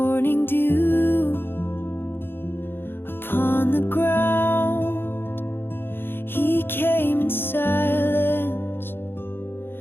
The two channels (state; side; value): late; right; 0.10 ms